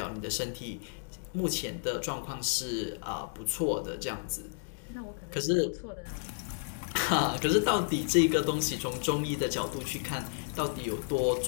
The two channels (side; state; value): right; silent; digital silence